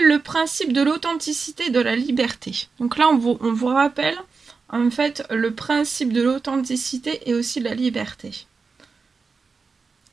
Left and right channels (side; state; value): left; quieter; 4.7 dB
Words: le principe de l'authenticité et de la liberté. Donc là, on vous rappelle en fait le principe de l'authenticité et aussi de la liberté.